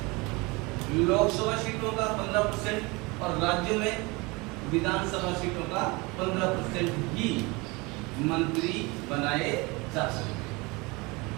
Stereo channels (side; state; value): left; quieter; 25.6 dB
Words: लोकसभा सीटों का 15% और राज्यों में विधानसभा सीटों का 15% ही मंत्री बनाए जा सकते हैं।